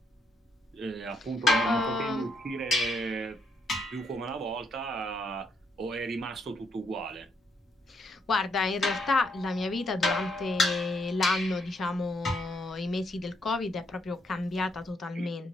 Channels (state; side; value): normal; both; correlation 0.75